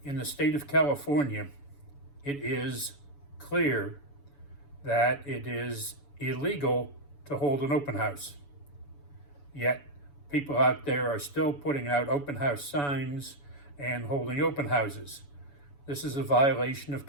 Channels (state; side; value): late; right; 7.0 ms